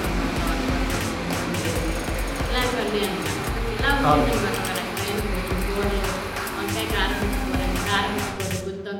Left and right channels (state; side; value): identical; both; correlation 1.00